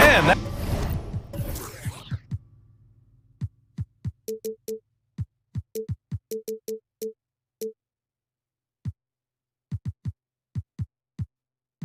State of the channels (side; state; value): both; identical; correlation 1.00